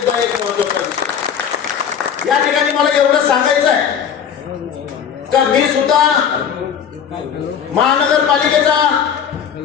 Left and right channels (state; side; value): quieter; right; 7.9 dB